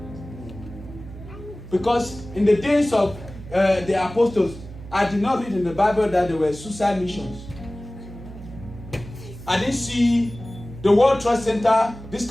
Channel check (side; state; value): right; noise; hum, 14 dB below the sound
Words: Because in the days of the apostles, I did not read in the Bible that there were suicide missions. I didn't see the World Trade Center, this